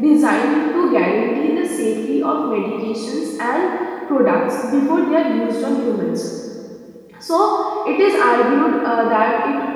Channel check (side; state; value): both; identical; correlation 1.00